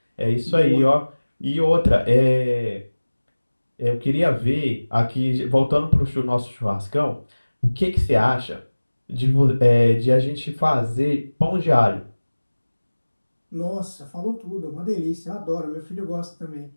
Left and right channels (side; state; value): both; inverted; correlation -1.00